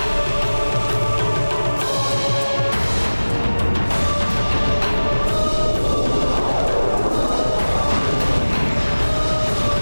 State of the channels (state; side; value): inverted; both; correlation -1.00